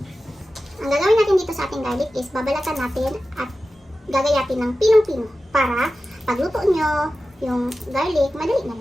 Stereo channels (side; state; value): both; normal; correlation 0.94